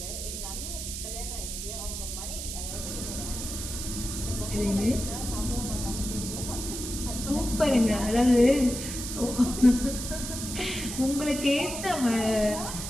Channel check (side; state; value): right; noise; hiss, 6 dB below the sound